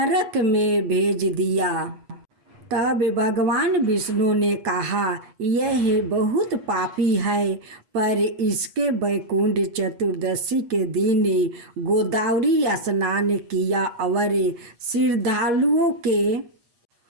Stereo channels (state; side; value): late; left; 8.3 ms